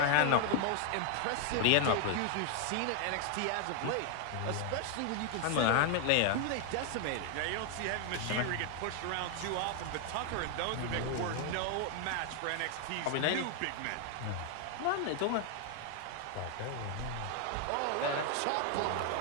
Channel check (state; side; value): different; both; correlation 0.00